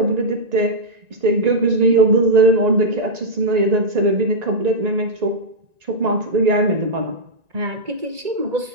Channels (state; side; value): late; left; 1.9 ms